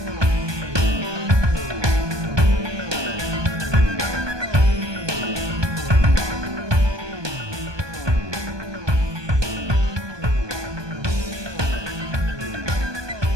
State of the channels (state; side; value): late; left; 1.2 ms